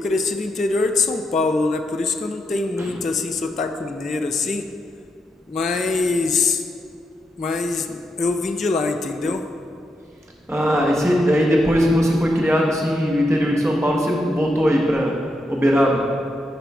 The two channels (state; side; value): normal; both; correlation 0.83